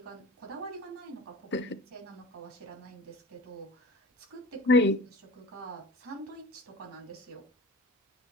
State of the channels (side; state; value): both; normal; correlation 0.39